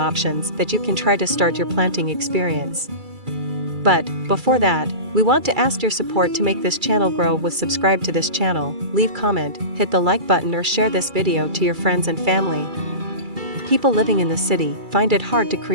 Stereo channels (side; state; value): left; late; 2.3 ms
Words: that you can try to start your planting experience. But, before that, we want to ask your support to make this channel grow with subscribe to this channel, leave comment, hit the like button or share this video to your friends and family. People living in the city find it hard to